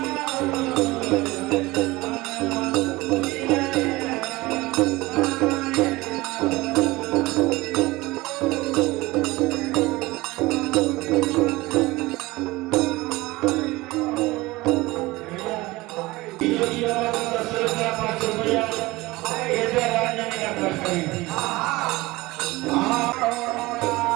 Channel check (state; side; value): quieter; left; 20.6 dB